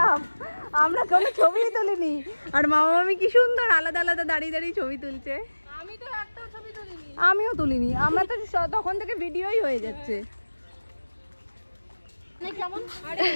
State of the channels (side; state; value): both; inverted; correlation -1.00